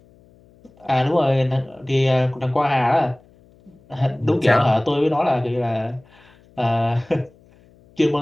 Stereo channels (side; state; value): left; noise; hum, 29 dB below the sound